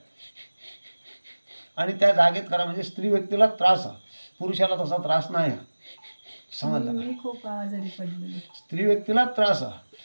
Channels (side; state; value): both; inverted; correlation -1.00